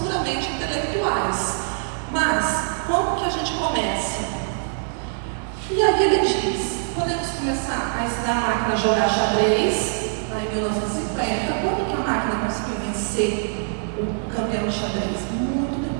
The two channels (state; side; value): silent; left; 61 dB below the other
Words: intelectuais. Mas como que a gente começa? E aí ele diz: podemos começar a ensinar a máquina a jogar xadrez, lá em 1950. Quando que a máquina conseguiu vencer o campeão xadrez? Muito